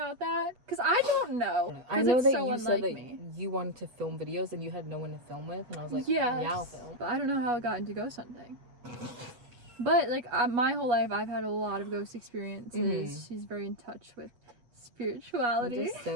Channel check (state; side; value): late; left; 8.4 ms